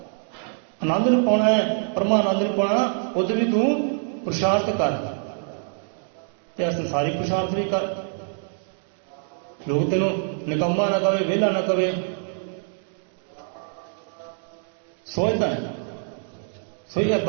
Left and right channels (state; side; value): silent; left; 57 dB below the other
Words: आनंद नूं पाउणा है, परमानंद नूं पाउणा, उधर भी तू पुरुषार्थ कर, ते संसारी पुरुषार्थ भी कर। लोग तेन निकम्मा ना कहे, वेला ना कहे, सोचता है। सो